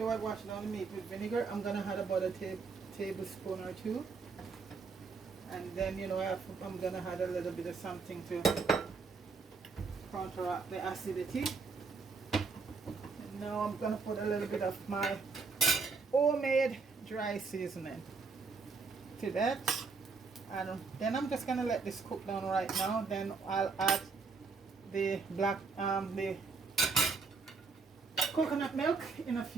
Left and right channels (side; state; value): left; quieter; 4.7 dB